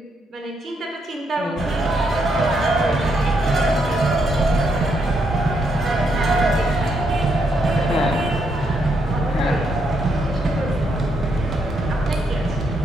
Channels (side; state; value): both; normal; correlation 0.77